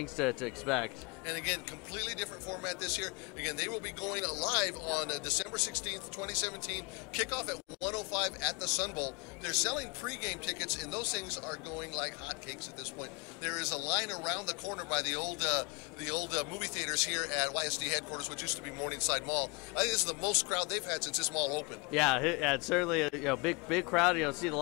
to expect. And again, completely different format this year. Again, they will be going live on December 16th, 2017. Kickoff at 1:05 at the Sun Bowl. They're selling pregame tickets, and those things are going like hotcakes at this point. There is a line around the corner by the old movie theaters here at YSD headquarters, which used to be Morningside Mall. I think this is the most crowd they've had since this mall opened. Yeah, it's certainly a big crowd. See a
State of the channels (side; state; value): right; quieter; 30.1 dB